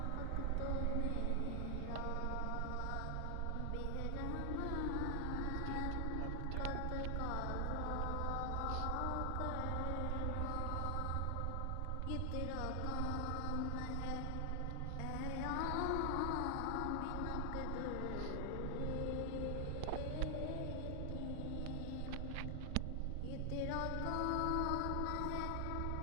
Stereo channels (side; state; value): both; different; correlation 0.00